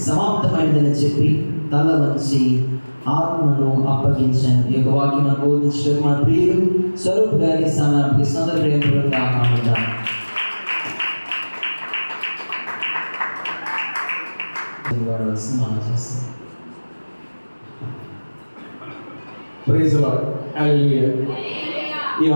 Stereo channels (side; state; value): both; inverted; correlation -1.00